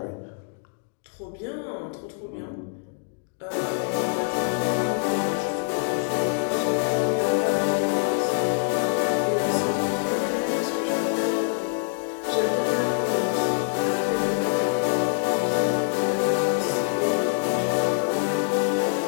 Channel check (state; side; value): silent; right; digital silence